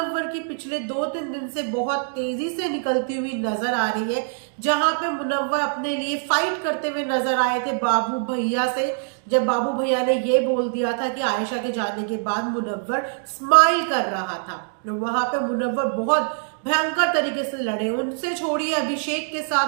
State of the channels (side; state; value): left; silent; digital silence